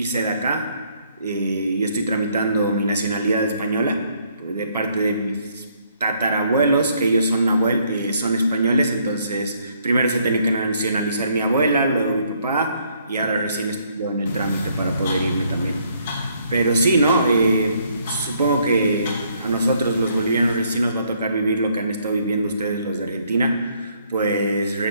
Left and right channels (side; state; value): both; inverted; correlation -0.68